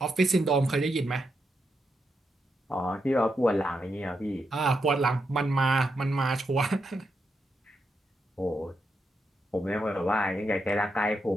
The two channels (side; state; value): both; normal; correlation 0.83